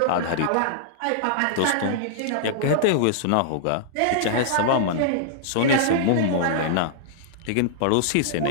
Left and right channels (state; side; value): different; both; correlation -0.01